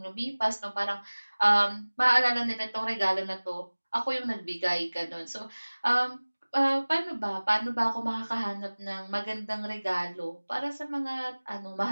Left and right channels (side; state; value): both; inverted; correlation -1.00